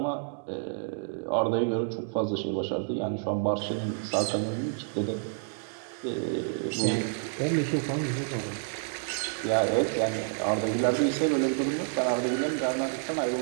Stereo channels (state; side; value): silent; left; digital silence